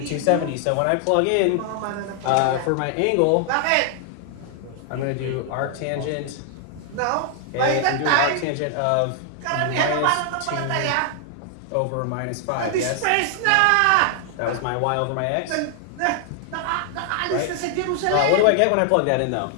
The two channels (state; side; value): different; both; correlation 0.00